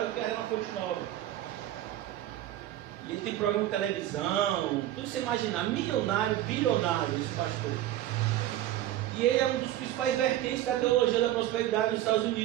do que a Arena Fonte Nova. E ele tem programa de televisão, tudo que você imaginar, milionário, bilionário, esse pastor. E ele é um dos principais vertentes da teologia da prosperidade nos Estados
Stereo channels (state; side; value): quieter; left; 13.5 dB